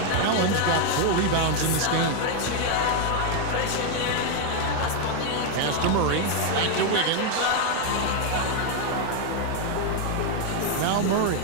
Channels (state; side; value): different; both; correlation 0.01